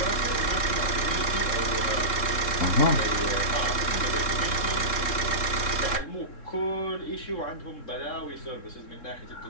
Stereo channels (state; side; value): late; right; 3.7 ms